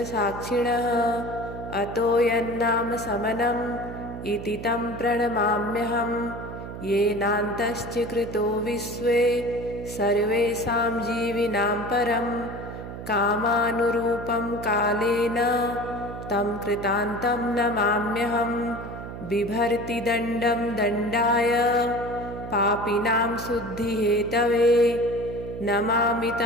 साक्षिणः अतो यन्नाम समनम् इति तं प्रणमाम्यहं येनान्तश्च कृतो विश्वे सर्वेषां जीविनां परं कामानुरूपं कालेन तं कृतान्तं नमाम्यहं बिभर्ति दण्डं दण्डाय पापिनां शुद्धिहेतवे नमामि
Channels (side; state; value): right; noise; hum, 10 dB below the sound